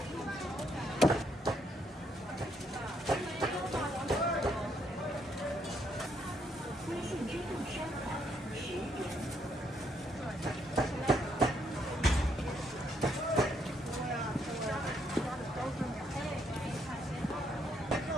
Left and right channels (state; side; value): normal; both; correlation 0.73